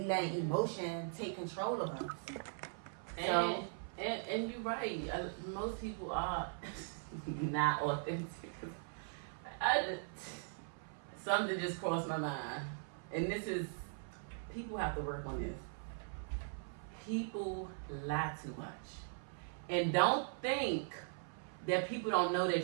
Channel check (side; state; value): left; silent; 51 dB below the other